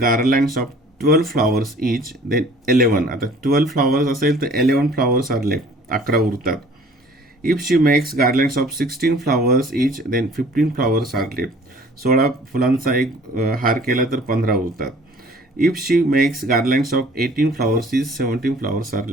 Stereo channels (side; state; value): both; normal; correlation 0.52